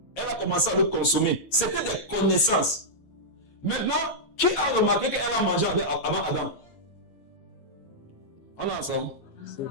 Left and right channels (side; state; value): right; late; 15 ms